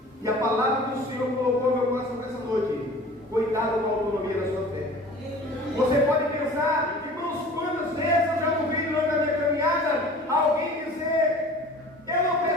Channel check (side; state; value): both; normal; correlation 0.44